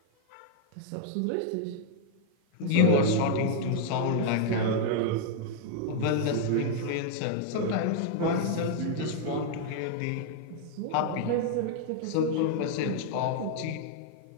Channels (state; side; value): different; both; correlation -0.01